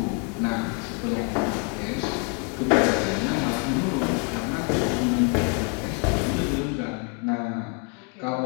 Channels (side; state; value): right; quieter; 37.7 dB